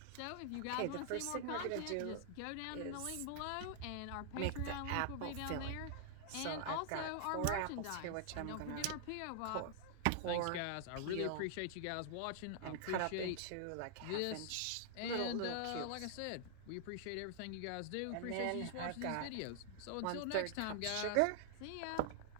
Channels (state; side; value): different; both; correlation 0.00